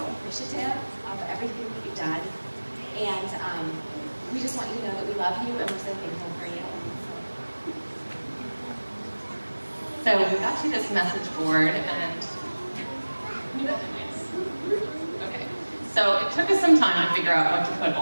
appreciative of everything that you've done. And we just want you to know that we love you, and we're so thankful for you. So we got you this message board, and okay. So it took us some time to figure out what to put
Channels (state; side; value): inverted; both; correlation -1.00